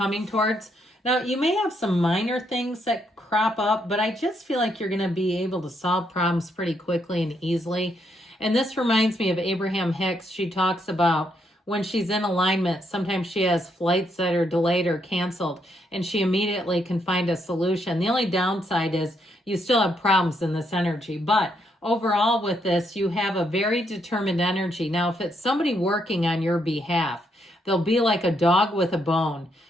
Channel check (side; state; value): both; normal; correlation 0.76